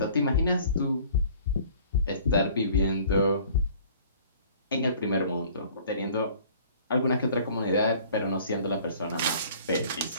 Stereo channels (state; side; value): inverted; both; correlation -0.51